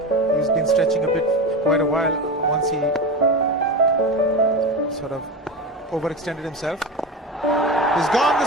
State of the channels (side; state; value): both; normal; correlation 0.24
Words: He's been stretching a bit for quite a while once he sort of overextended himself. He's gone the